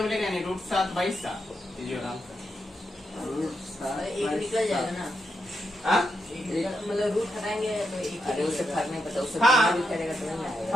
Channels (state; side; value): normal; both; correlation 0.84